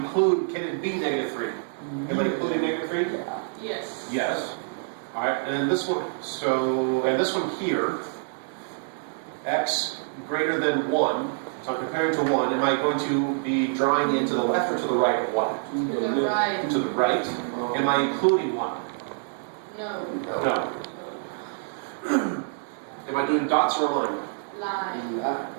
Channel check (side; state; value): left; silent; digital silence